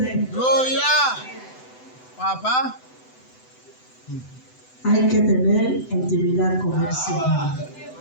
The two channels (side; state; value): right; late; 7.9 ms